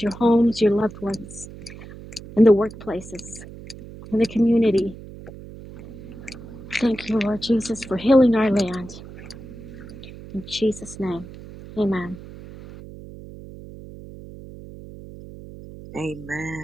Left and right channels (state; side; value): noise; right; hum, 15 dB below the sound